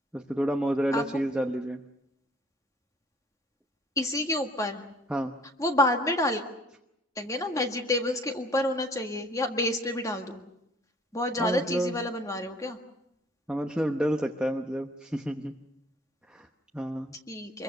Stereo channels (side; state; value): both; normal; correlation 0.56